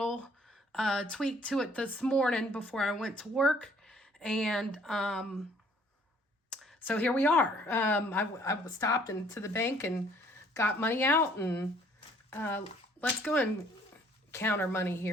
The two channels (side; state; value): both; normal; correlation 0.60